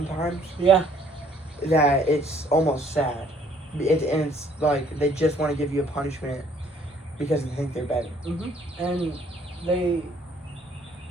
Yeah. that it's almost sad. And it's like they just want to give you a punishment because they think they're better. Mm-hmm. And they,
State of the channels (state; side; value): normal; both; correlation 0.61